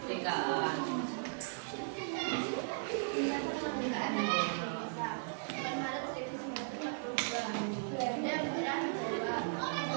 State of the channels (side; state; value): left; silent; digital silence